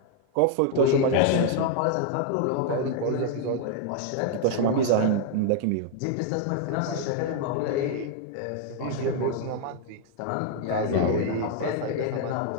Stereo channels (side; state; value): both; different; correlation 0.00